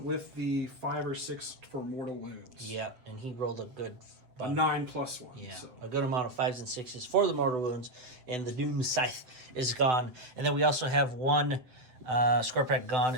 with the 5 or 6 for mortal wounds. Yeah, and he rolled a good... A 9+1. Yeah, so. a good amount of 5s and 6s for the mortal wounds, and the Doom Scythe is gone. And then we also have 1 Scorpack gone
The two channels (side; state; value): left; late; 8.2 ms